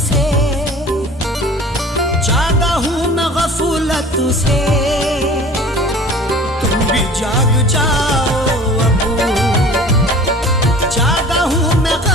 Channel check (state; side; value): normal; both; correlation 0.44